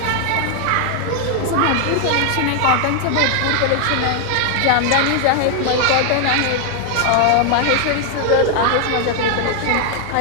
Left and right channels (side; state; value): both; different; correlation 0.00